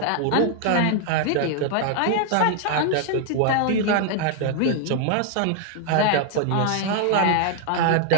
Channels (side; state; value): both; different; correlation 0.00